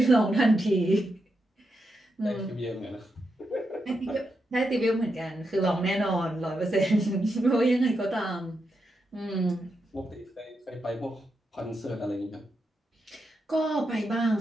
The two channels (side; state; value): both; normal; correlation 0.85